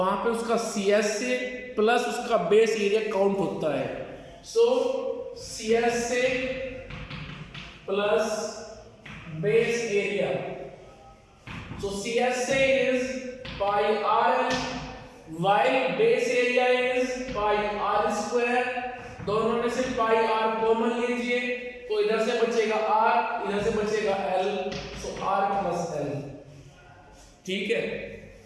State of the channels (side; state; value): both; identical; correlation 1.00